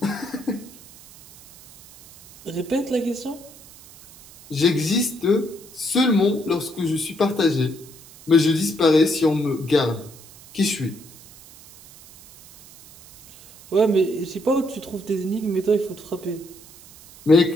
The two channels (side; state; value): right; noise; hiss, 21 dB below the sound